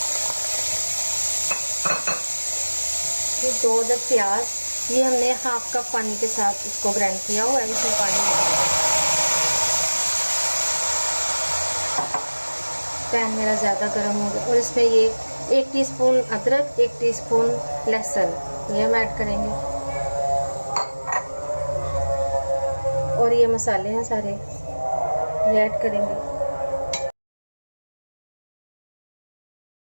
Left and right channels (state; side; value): inverted; both; correlation -1.00